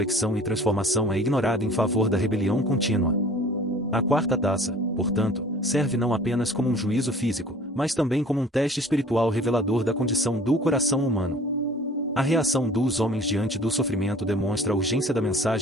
e transformação é ignorada em favor da rebelião contínua. A quarta taça, portanto, serve não apenas como um juízo físico, mas também como um teste espiritual revelador da condição do coração humano. A reação dos homens diante do sofrimento demonstra a urgência da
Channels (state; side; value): normal; both; correlation 0.48